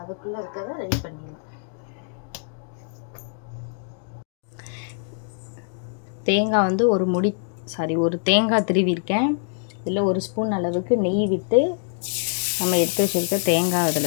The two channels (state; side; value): silent; right; digital silence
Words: அதுக்குள்ளே இருக்கிறத ரெடி பண்ணிடலாம் தேங்காய் வந்து ஒரு தேங்காய் திருவிருக்கேன் இதில் 1 ஸ்பூன் அளவுக்கு நெய் விட்டு நம்ம எடுத்து வச்சுருக்க தேங்காய்